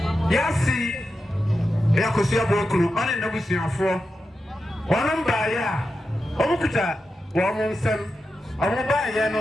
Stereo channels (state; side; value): normal; both; correlation 0.90